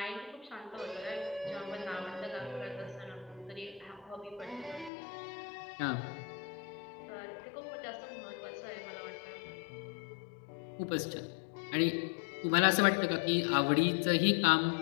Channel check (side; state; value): right; drops out; at 4.9 s